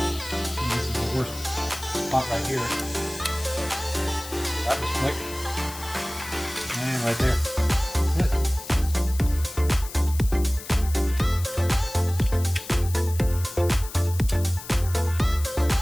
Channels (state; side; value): noise; left; hiss, 13 dB below the sound